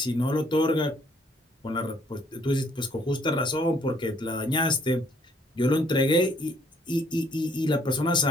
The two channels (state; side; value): normal; both; correlation 0.64